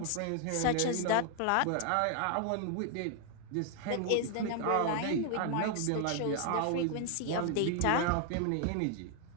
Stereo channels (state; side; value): different; both; correlation 0.00